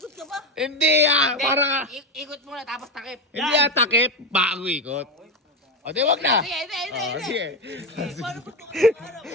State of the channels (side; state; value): both; normal; correlation 0.14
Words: ka ba? Hindi parang... Ikot muna tapos takip. Hindi takip, bago ikot. O, di wag na. Sige. Paano ba ito